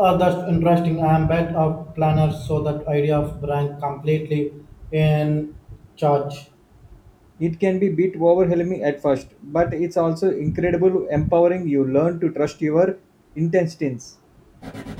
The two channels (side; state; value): both; identical; correlation 1.00